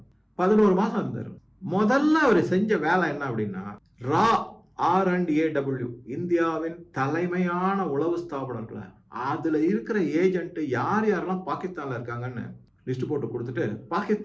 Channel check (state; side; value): identical; both; correlation 1.00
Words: 11 மாசம் இருந்தார். முதல்ல அவர் செஞ்ச வேலை என்ன அப்படின்னா, RAW, இந்தியாவின் தலைமையான உளவு ஸ்தாபனங்களை, அதுல இருக்கிற ஏஜென்ட் யார் யாரெல்லாம் பாகிஸ்தான்ல இருக்காங்கன்னு லிஸ்ட் போட்டு கொடுத்துட்டு,